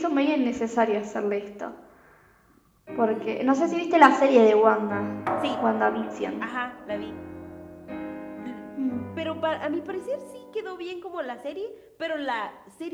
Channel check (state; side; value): identical; both; correlation 1.00